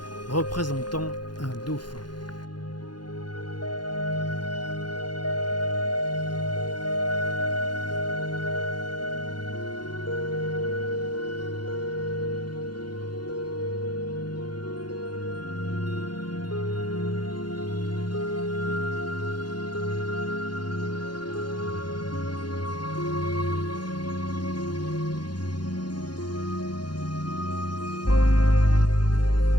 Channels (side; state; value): right; late; 0.71 ms